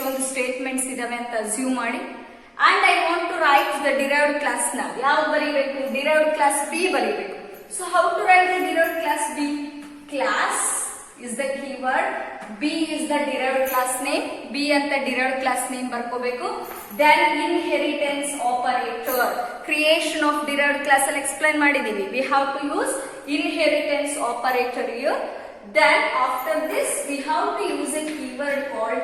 statements ಇದಾವೆ ಅಂತ assume ಮಾಡಿ. And I want to write the derived class now. ಯಾವ ಬರೀಬೇಕು, derived class B ಬರೀಬೇಕು. So how to write the derived class B? Class is the keyword, B is the derived class name, B ಅಂತ derived class name ಬರ್ಕೋಬೇಕು. Then inheritance operator, creation of derived class ಅಲ್ಲಿ explain ಮಾಡಿದೀವಿ. We have to use inheritance operator here. Then after this we have to use a keyword called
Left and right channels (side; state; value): both; identical; correlation 1.00